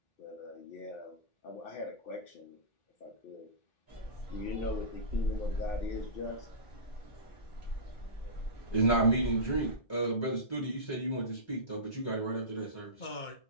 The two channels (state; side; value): late; right; 1.2 ms